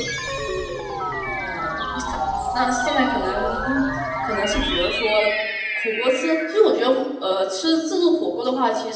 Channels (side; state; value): both; identical; correlation 1.00